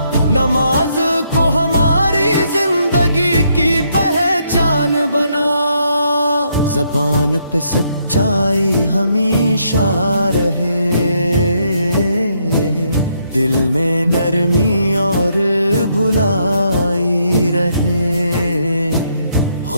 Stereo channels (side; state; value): both; inverted; correlation -0.74